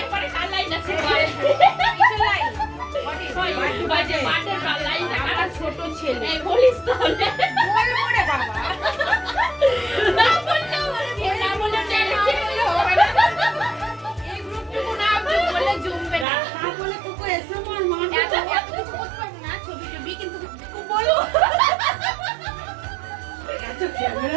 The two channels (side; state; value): left; drops out; at 16.2 s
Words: এরপরে কার লাইন আছে বল? ওই যে বার্থডে কার লাইন, আমার ছোট ছেলে। এই বলিস তাহলে। বলবো রে বাবা। না বললেও না বললে হবে না। এই গ্রুপটুকু না বলে জমবে না। তা বলে তোকে এসে আমার মা এত কিছু করতে পারবো না, ছবি টবি, কিন্তু বলো। এত